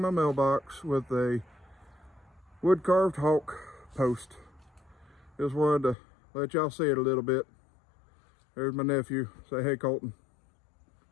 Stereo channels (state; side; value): drops out; right; at 6.0 s